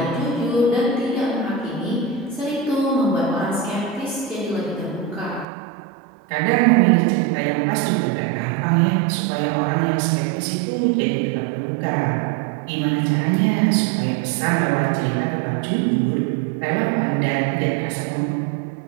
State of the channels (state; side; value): drops out; left; at 5.5 s